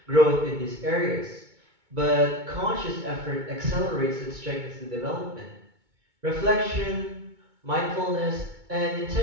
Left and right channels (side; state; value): left; late; 2.2 ms